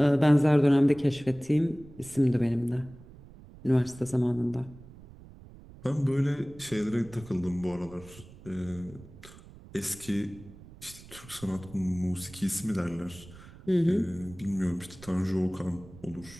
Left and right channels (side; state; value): right; noise; rumble, 19 dB below the sound